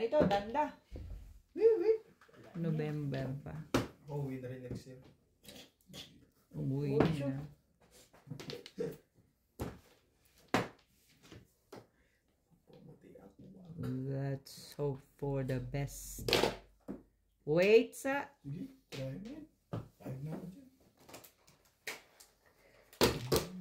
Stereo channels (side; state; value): both; identical; correlation 1.00